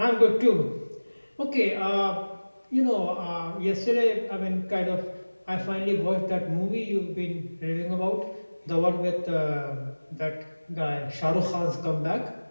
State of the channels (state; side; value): inverted; both; correlation -1.00